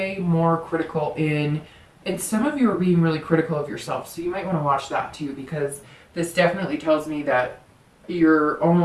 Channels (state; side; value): identical; both; correlation 1.00